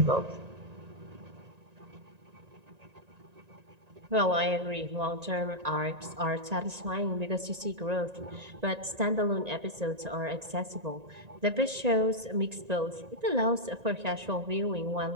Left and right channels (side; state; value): left; late; 1.9 ms